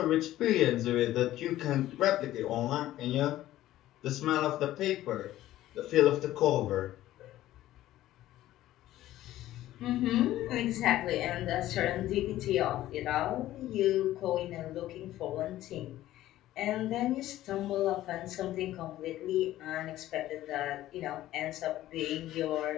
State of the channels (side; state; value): right; quieter; 14.4 dB